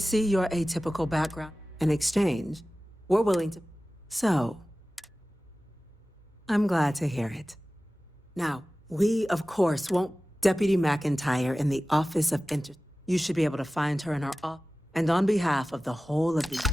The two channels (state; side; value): normal; both; correlation 0.96